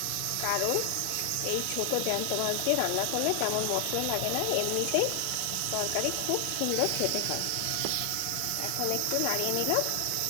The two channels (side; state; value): both; different; correlation 0.00